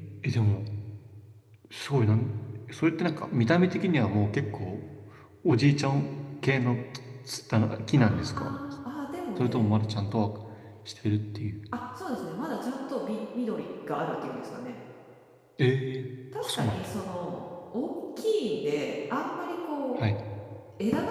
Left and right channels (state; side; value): identical; both; correlation 1.00